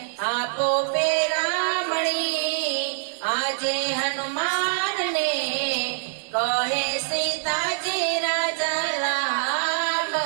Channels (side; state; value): left; silent; 62 dB below the other